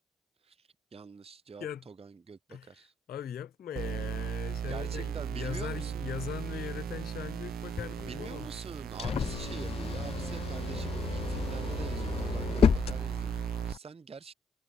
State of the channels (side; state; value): both; normal; correlation 0.70